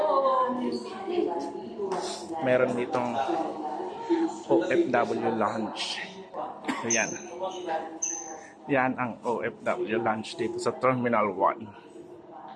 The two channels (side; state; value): both; identical; correlation 1.00